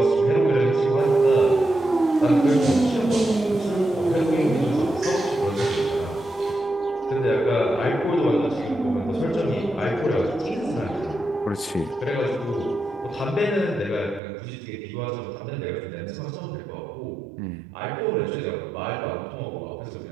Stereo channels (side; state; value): left; drops out; at 14.2 s